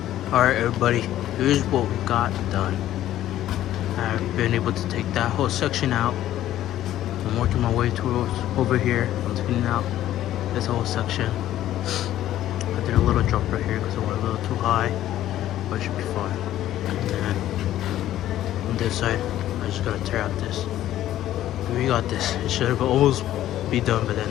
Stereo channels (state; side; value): quieter; right; 13.0 dB